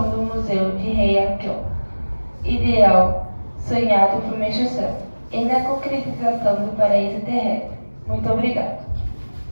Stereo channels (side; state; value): both; inverted; correlation -1.00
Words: do Museu de Heian-kyo, ideal sonhado por Meixo Sama, e na concretização do paraíso terrestre. Muito obrigado.